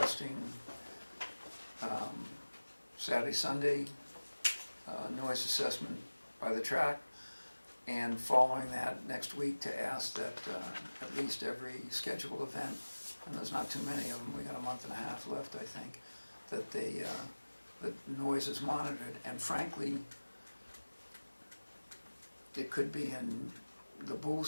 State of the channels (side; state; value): both; inverted; correlation -1.00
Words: Saturday, Sunday noise assessment by the track, and following that next week to ask that at least every scheduled event, and there's not too many of them, we got a month and a half left, I think, that the noise is monitored, and frankly, it could be in the